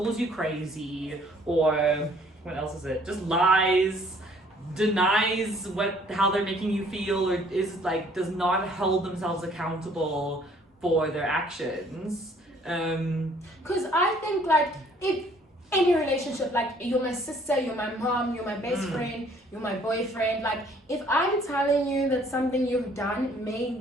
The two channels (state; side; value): normal; both; correlation 0.59